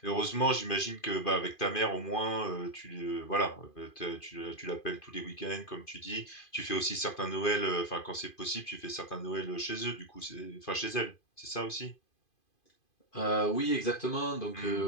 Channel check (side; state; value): right; late; 2.5 ms